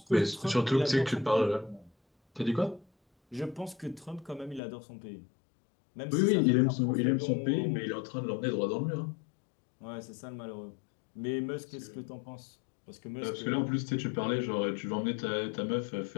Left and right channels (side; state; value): right; drops out; at 4.6 s